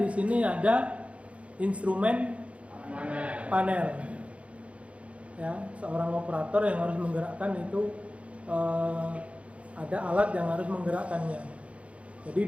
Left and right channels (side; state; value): left; late; 0.063 ms